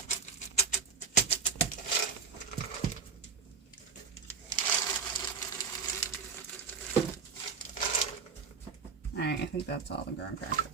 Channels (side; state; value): left; quieter; 5.7 dB